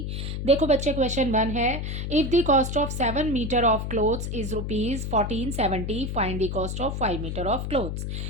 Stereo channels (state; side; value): noise; left; hum, 4 dB below the sound